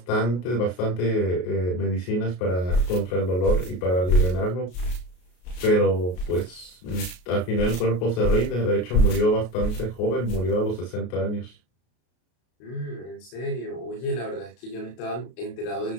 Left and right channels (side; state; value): right; late; 33 ms